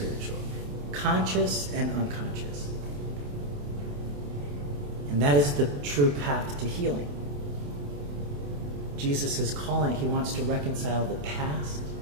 conscious and unconscious. And that is the true path to healing. Jesus is calling, he wants to reconcile the past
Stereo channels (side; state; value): left; late; 28 ms